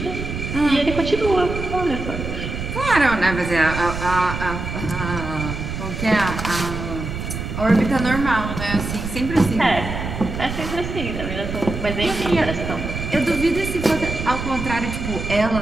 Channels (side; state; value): right; noise; rumble, 6 dB below the sound